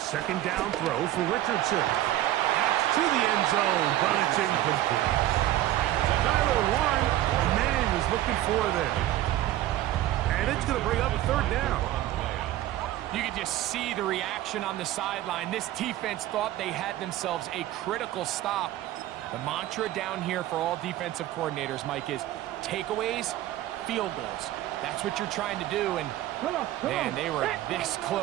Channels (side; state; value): left; quieter; 14.2 dB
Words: down throw for Richardson. That's to the end zone, but it's incomplete. Tyler Warren, the man was looking for there. And it's going to bring up a third down. You can just see the reaction on the sideline. This defense thought they had themselves a critical stop. The mantra down here for all defensive coordinators, Mike, is takeaways, field goals. That's what you're trying to do, and man, they were this